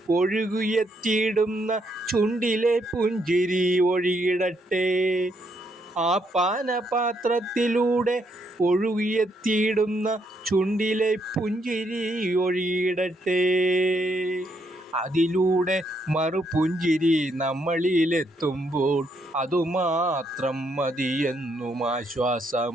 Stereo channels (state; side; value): normal; both; correlation 0.75